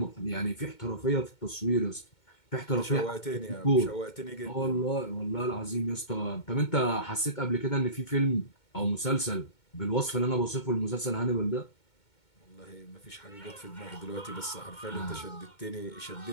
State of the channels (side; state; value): right; late; 2.2 ms